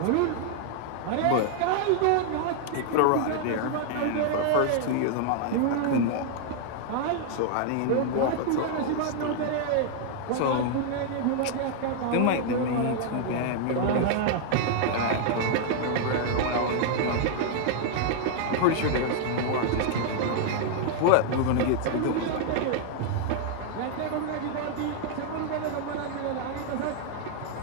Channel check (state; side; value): different; both; correlation 0.00